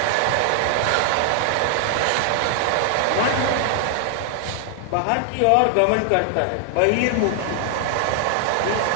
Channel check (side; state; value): both; different; correlation 0.00